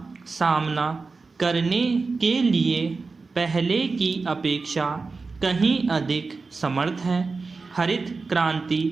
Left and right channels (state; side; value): quieter; left; 4.2 dB